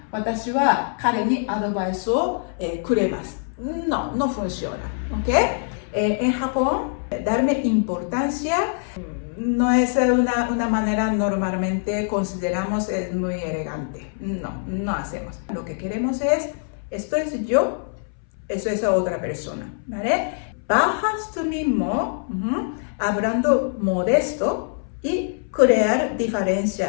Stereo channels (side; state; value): right; silent; 63 dB below the other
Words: Watashi wa kare ni advice o kuremasu. No funciona, ¿ok? En Japón, darme importancia no es una manera normalmente consideramos es muy elegante. No hacemos. Lo que queremos es, esto es yo, eso es otra persona, ¿vale? Bajas tú mismo, hablando modesto y crear